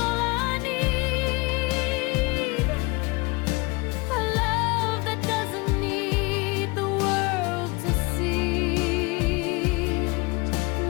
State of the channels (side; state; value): right; quieter; 25.9 dB